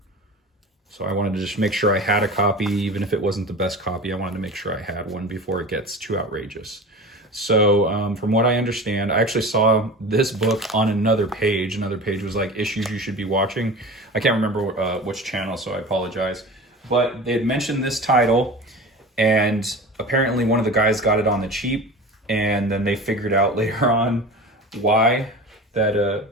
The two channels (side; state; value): both; normal; correlation 0.34